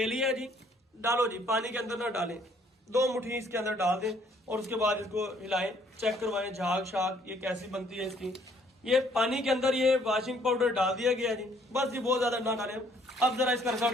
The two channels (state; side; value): normal; both; correlation 0.63